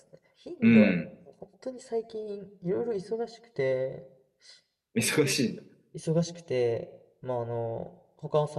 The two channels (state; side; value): identical; both; correlation 1.00